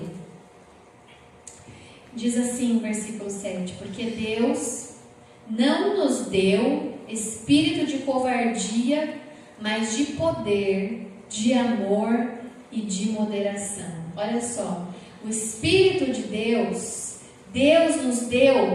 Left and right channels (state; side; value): identical; both; correlation 1.00